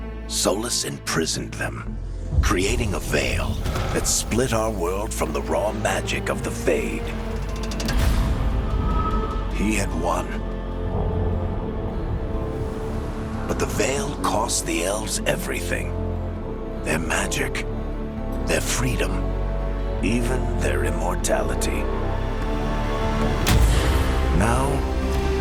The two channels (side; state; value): both; identical; correlation 1.00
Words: Solus imprisoned them, creating a veil that split our world from the raw magic of the Fade. He had won. But the veil cost the elves everything. Their magic, their freedom, even their immortality. Now,